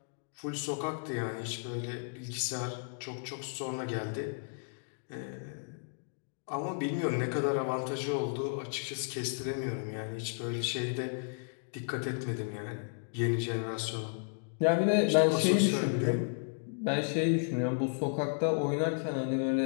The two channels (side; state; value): right; silent; digital silence